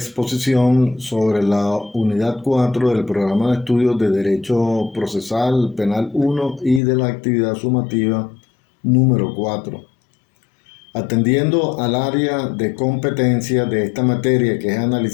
sobre la unidad 4 del programa de estudios de Derecho Procesal Penal 1 y de la actividad sumativa número 4. Atendiendo al área de competencia de esta materia, que es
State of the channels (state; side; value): drops out; right; at 6.8 s